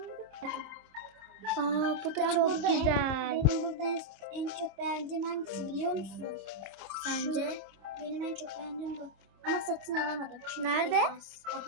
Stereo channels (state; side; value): late; left; 26 ms